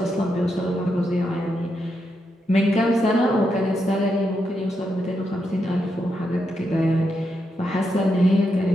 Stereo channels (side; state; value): both; normal; correlation 0.83